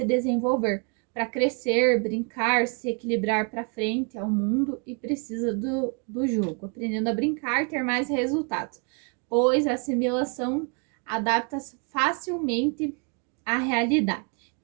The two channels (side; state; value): left; quieter; 37.2 dB